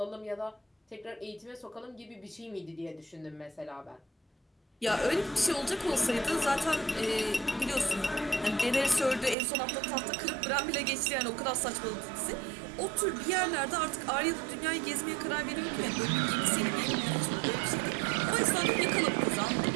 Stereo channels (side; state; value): left; drops out; at 9.3 s